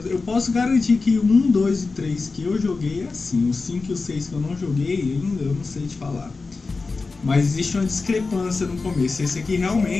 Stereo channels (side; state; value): right; quieter; 4.0 dB